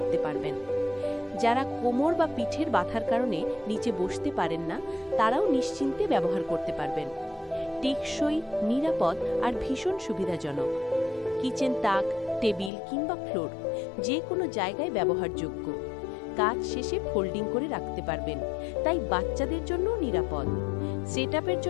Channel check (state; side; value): drops out; right; at 12.7 s